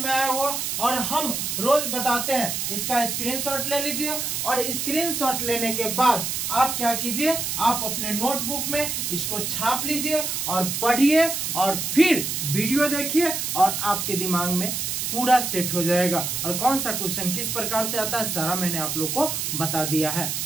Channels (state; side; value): noise; right; hiss, 2 dB below the sound